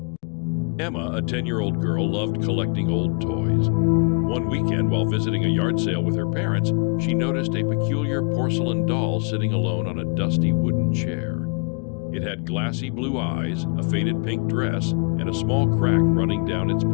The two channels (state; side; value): quieter; right; 34.6 dB